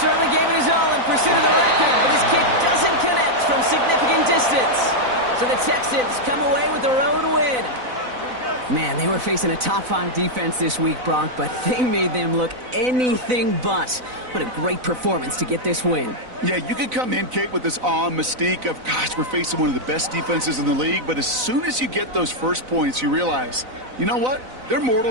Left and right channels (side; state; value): left; late; 4.0 ms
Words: gave it his all in pursuit of the record, but his kick doesn't connect from significant distance. So the Texans come away with the road win. Man, they were facing a top-5 defense this week, Brock, but they made them look anything but. What a great performance to get this win. Yeah, you could come in, Kate, with this awe and mystique of, gosh, we're facing one of the best defenses in the league, but as soon as you get those first points, you realize, you know what? They're